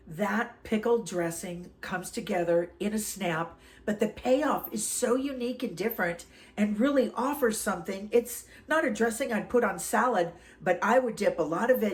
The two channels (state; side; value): identical; both; correlation 1.00